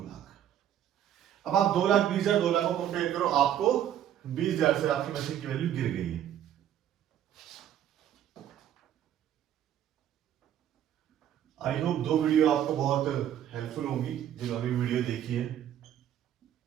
लाख। अब आप 2,20,000 2 लाख को कंपेयर करो, आपको 20,000 से आपकी मशीन की वैल्यू गिर गई है। आई होप 2 वीडियो आपको बहुत हेल्पफुल होंगी जिन्होंने वीडियो देखी है।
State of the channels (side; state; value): left; quieter; 10.7 dB